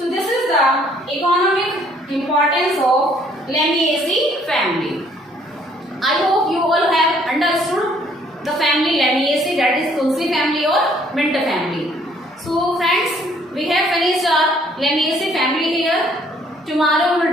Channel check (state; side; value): normal; both; correlation 0.63